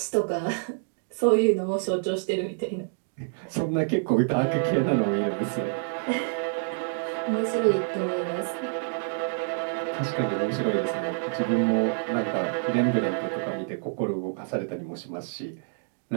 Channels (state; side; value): silent; left; digital silence